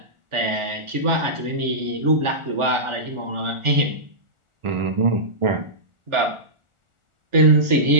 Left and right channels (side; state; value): left; late; 1.4 ms